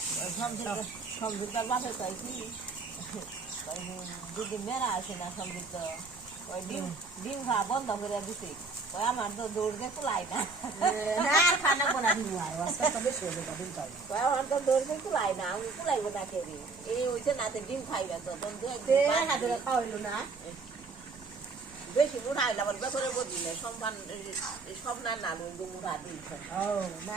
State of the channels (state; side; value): quieter; left; 4.1 dB